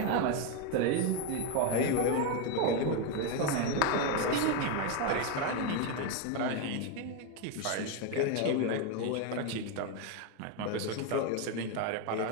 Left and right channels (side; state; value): both; different; correlation 0.02